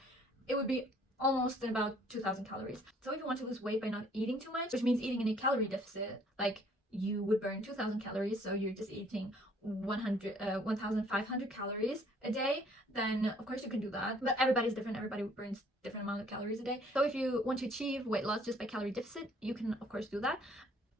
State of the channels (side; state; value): both; normal; correlation 0.60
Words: it would be almost about 2,000 calories. So if you want to lose weight by not eating too much, which means eating in a calorie deficit, like you would burn 2,000 calories, so you're just eating 1,500 calories a day, then of course you can do that. But everybody's different, everybody burns different amount of calories a day. So if you want to achieve weight loss just by calorie deficit, you can of course do that.